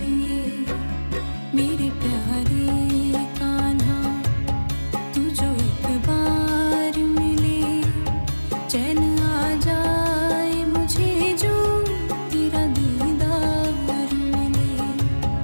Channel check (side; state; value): both; inverted; correlation -1.00